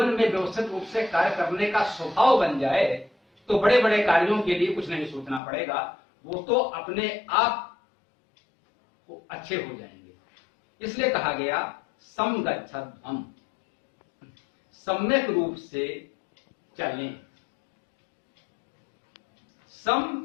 में व्यवस्थित रूप से कार्य करने का स्वभाव बन जाए तो बड़े बड़े कार्यों के लिए कुछ नहीं सोचना पड़ेगा, वो तो अपने आप अच्छे हो जाएंगे। इसलिए कहा गया समगच्छध्वम्, सम्यक रूप से चलें।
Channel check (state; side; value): drops out; right; at 5.4 s